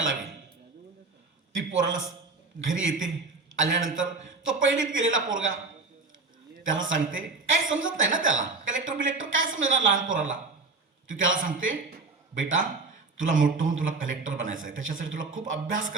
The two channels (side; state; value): left; quieter; 3.9 dB